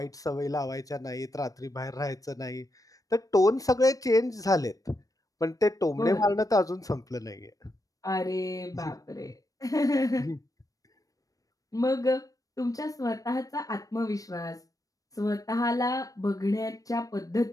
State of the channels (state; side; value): late; right; 0.17 ms